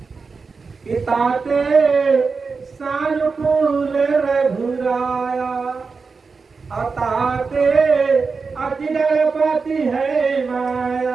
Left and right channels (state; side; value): quieter; left; 4.7 dB